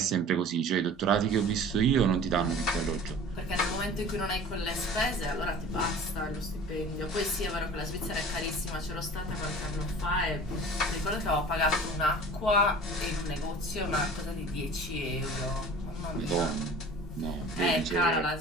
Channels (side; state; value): both; normal; correlation 0.42